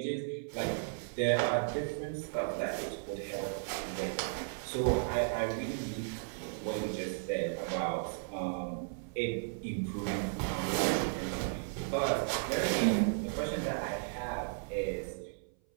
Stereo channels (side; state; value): left; silent; 54 dB below the other